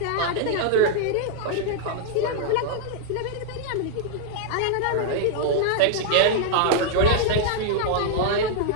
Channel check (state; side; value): different; both; correlation -0.01